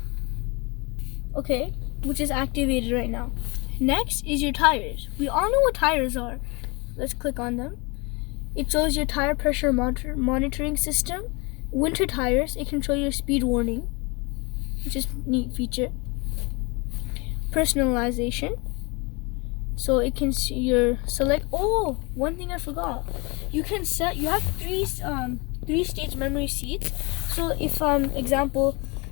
Okay, which is activated right now. Next is your tires. We all know what tires are. Let's click on them. It shows your tire pressure monitoring system. Winter tires, it can show your speed warning, which is a neat feature. Personalization. So it can see your select. Oh, one thing I forgot. You can set. You have three stage memory seats. So if example,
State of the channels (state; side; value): quieter; right; 28.4 dB